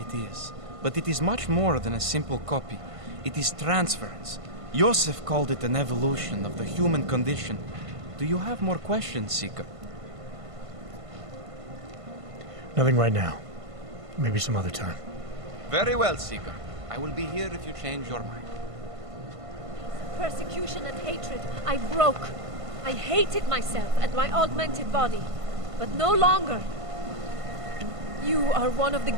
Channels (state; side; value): late; left; 1.5 ms